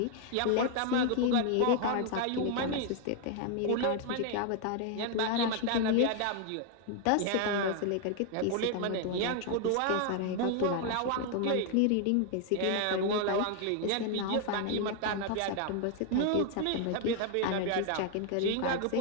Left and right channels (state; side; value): different; both; correlation 0.00